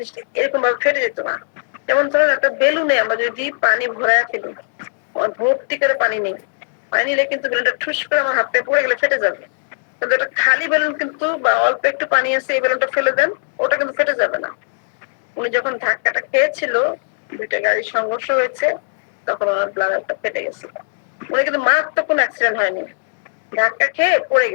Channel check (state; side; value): silent; right; digital silence